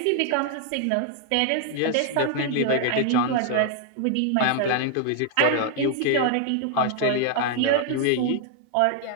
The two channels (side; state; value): both; different; correlation 0.00